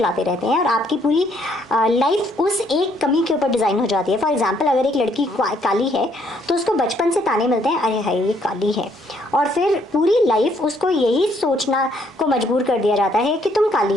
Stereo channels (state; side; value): normal; both; correlation 0.68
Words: रहते हैं और आपकी पूरी लाइफ उस एक कमी के ऊपर डिज़ाइन हो जाती है। फॉर एग्जांपल, अगर एक लड़की काली है तो उसको बचपन से ताने मिलते हैं, अरे हाय ये काली है, और फिर पूरी लाइफ उसको यही सोचना को मजबूर कर दिया जाता है कि तुम